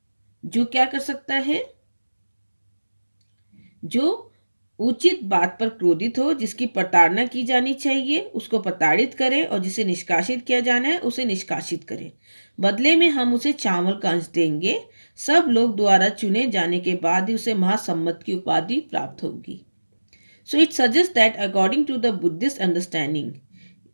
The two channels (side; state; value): both; inverted; correlation -1.00